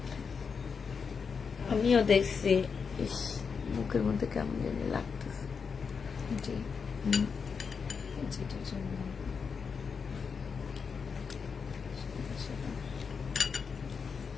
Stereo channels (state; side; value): quieter; right; 5.8 dB